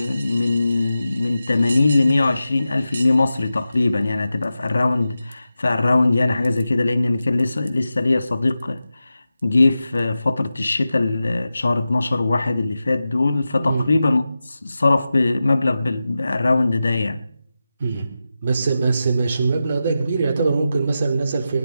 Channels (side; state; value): both; inverted; correlation -0.92